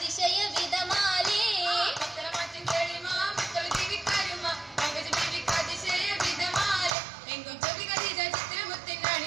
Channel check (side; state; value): left; drops out; at 7.0 s